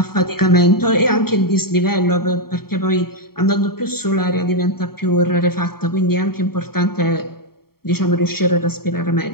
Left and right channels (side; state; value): right; late; 0.95 ms